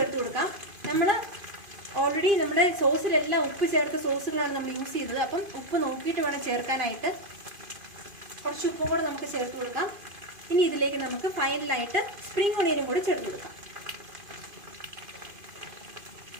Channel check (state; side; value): late; left; 2.5 ms